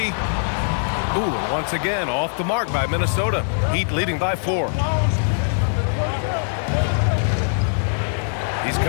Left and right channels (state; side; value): silent; right; digital silence